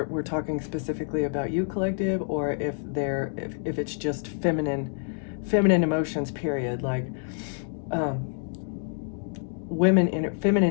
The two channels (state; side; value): silent; right; 60 dB below the other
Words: we're talking specifically about you, collective, or if it's just feminine emotions. Period. Like.